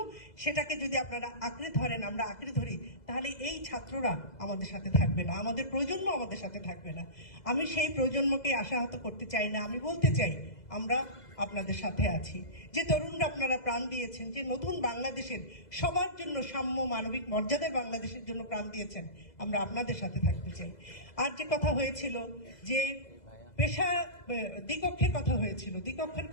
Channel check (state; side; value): late; right; 2.0 ms